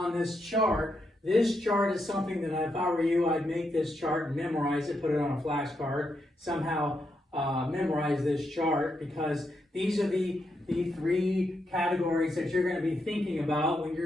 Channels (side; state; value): both; normal; correlation 0.82